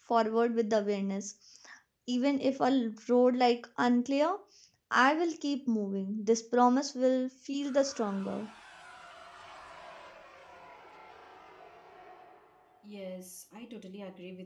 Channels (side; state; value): both; identical; correlation 1.00